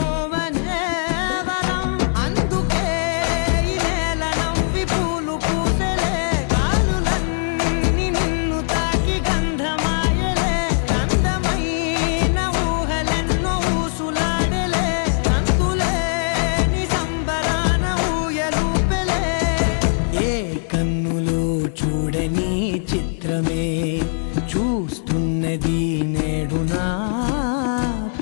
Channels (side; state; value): right; silent; digital silence